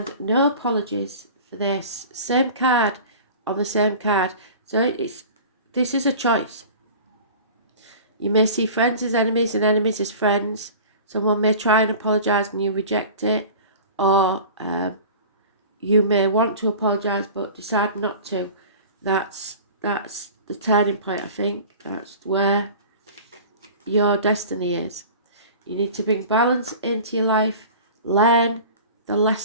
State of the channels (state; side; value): inverted; both; correlation -0.40